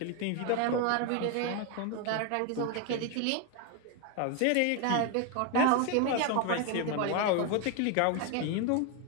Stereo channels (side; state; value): both; different; correlation 0.01